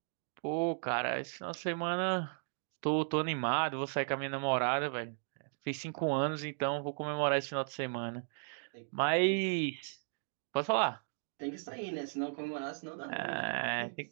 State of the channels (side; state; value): left; silent; digital silence